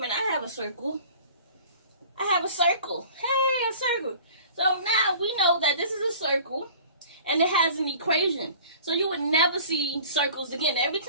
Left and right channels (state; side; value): inverted; both; correlation -0.46